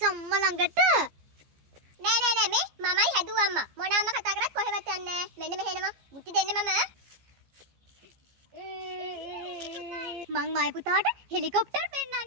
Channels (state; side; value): late; left; 15 ms